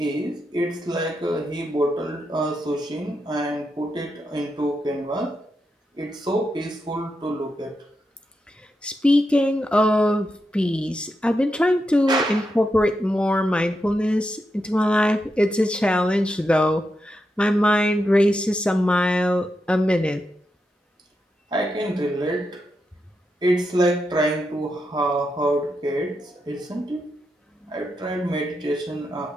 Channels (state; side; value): normal; both; correlation 0.86